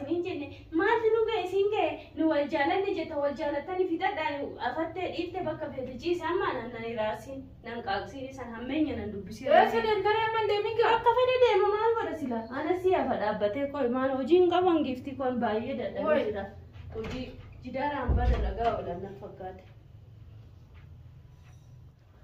jenne maalti nu ga'e isin ga'e nu wal jaalanne jetta wal jaalattanii fixadhaan afattee dhiifte bakka fedhe ciise amma nan iraarsiin nan qaaqsiin isan hammeenya nan dubbisii sadan garee amma deemin gaa akka fedhe deema maal godha sila ana si hafa dhaabbatee qoy maal hojiin qaban gifti kun baay'ee dadhabee jira hojii jidaaraan bada lagaa oolan na fakkaate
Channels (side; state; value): both; identical; correlation 1.00